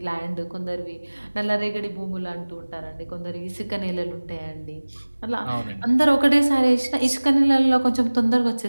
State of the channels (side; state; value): both; inverted; correlation -1.00